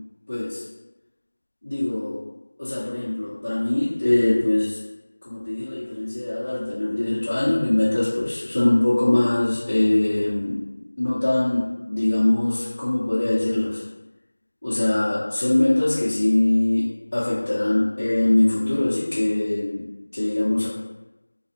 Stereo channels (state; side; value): inverted; both; correlation -1.00